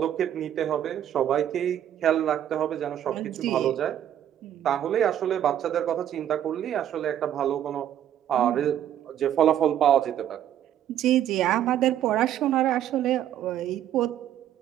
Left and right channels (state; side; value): quieter; left; 10.8 dB